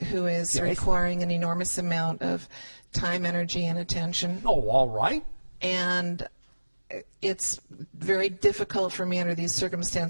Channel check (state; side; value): inverted; both; correlation -1.00